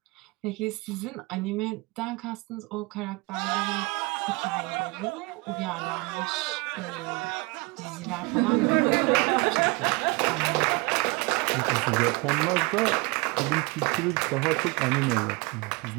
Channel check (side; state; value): left; quieter; 26.9 dB